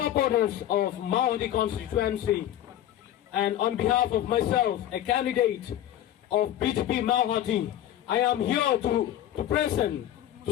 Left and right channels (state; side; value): quieter; right; 12.0 dB